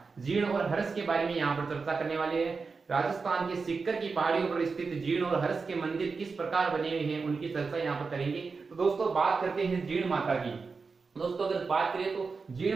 जीण और हर्ष के बारे में यहाँ पर चर्चा करने वाले हैं। राजस्थान के सिक्कर की पहाड़ियों पर स्थित जीण और हर्ष के मंदिर किस प्रकार बने हुए हैं उनकी चर्चा यहाँ पर करेंगे। तो दोस्तों बात करते हैं जीण माता की। दोस्तों अगर बात करें तो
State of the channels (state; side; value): quieter; left; 4.7 dB